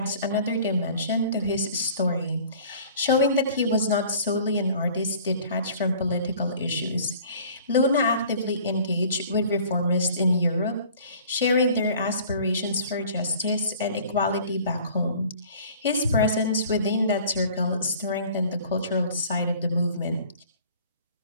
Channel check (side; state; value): both; inverted; correlation -0.49